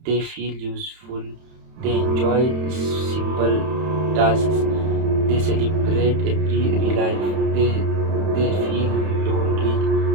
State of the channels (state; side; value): late; left; 31 ms